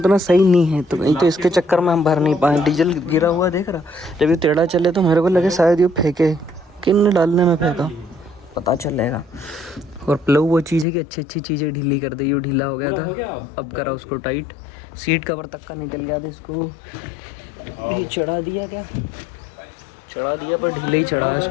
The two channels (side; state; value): right; drops out; at 10.9 s